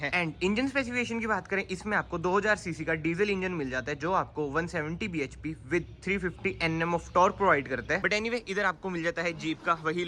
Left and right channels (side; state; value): both; identical; correlation 1.00